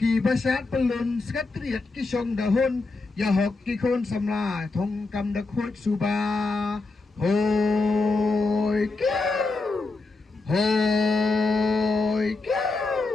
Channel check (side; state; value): right; quieter; 3.5 dB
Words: basyat pelun, sekretariat kisong dahun, ya hok kikon samla, thong kam dak hot suba. Hoi, kiu, hoi,